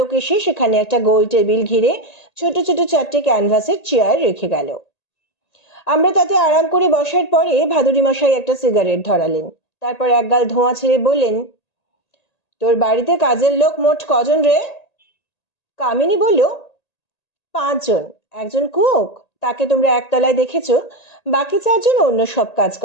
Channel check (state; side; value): late; right; 1.8 ms